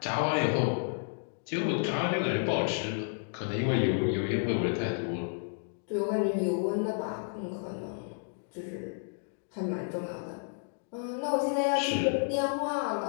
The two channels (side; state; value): right; silent; digital silence